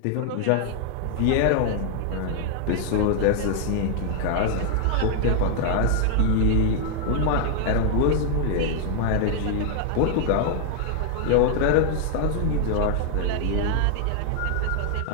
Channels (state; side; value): different; both; correlation 0.00